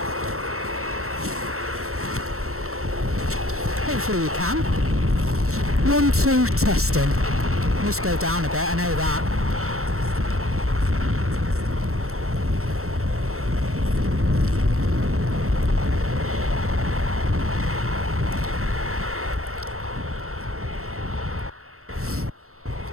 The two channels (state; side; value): late; left; 0.63 ms